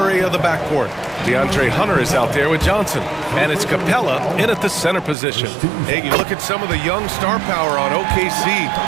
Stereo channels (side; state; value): left; drops out; at 5.2 s